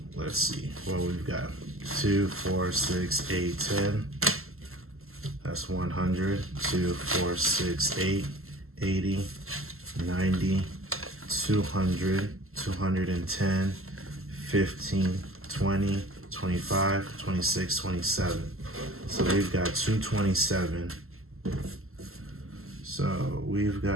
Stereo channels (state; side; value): late; left; 0.62 ms